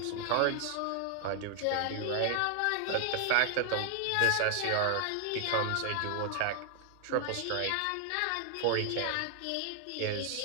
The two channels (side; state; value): both; different; correlation 0.00